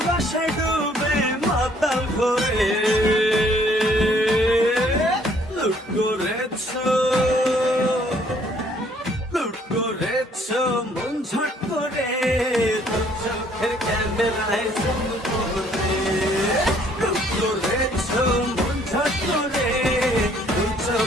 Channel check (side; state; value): both; normal; correlation 0.62